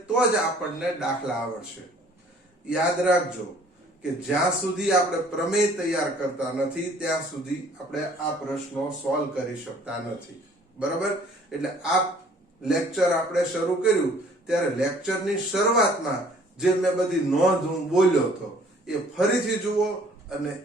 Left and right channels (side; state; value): both; normal; correlation 0.56